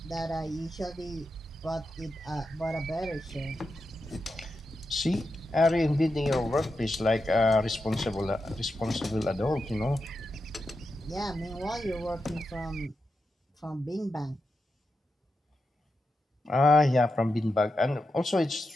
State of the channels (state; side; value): normal; both; correlation 0.88